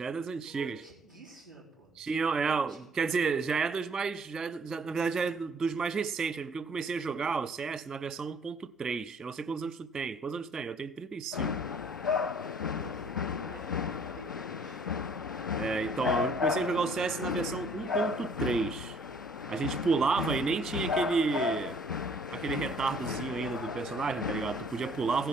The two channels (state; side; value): normal; both; correlation 0.59